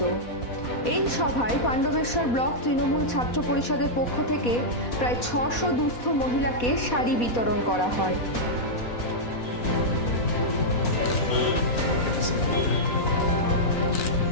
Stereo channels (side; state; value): right; late; 4.1 ms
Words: এই সভায় পাণ্ডবেশ্বর ব্লক তৃণমূল ছাত্র পরিষদের পক্ষ থেকে প্রায় 600 দুস্থ মহিলাকে শাড়ি বিতরণ করা হয়।